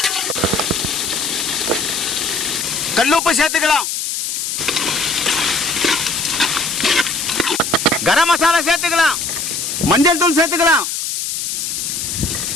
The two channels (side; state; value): left; noise; hiss, 3 dB below the sound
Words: கல்லுப்பு சேர்த்துக்கலாம். கரம் மசாலா சேர்த்துக்கலாம். மஞ்சள் தூள் சேர்த்துக்கலாம்.